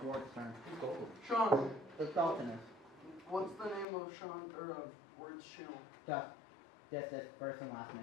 Ward's turn. It's cold. Sean, It's Dalton. what's the name of Sean, or of Word's channel? Duff. That's his first and last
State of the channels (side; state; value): right; drops out; at 3.9 s